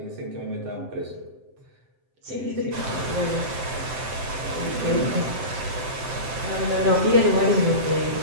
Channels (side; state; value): left; late; 7.7 ms